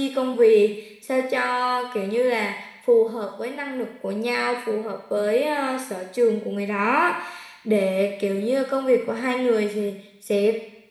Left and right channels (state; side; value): identical; both; correlation 1.00